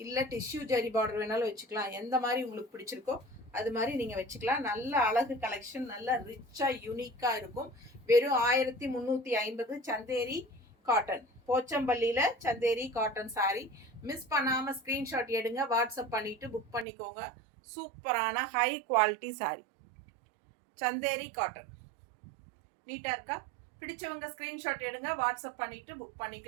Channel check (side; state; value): left; drops out; at 16.9 s